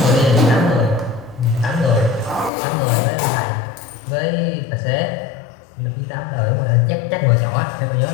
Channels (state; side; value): drops out; right; at 2.5 s